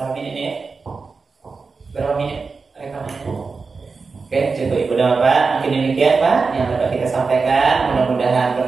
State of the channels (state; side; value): quieter; left; 4.5 dB